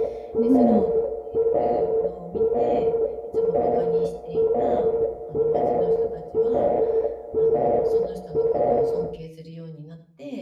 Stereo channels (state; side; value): identical; both; correlation 1.00